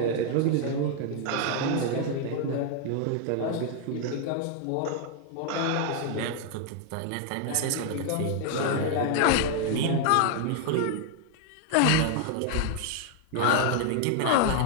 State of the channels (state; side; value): different; both; correlation 0.00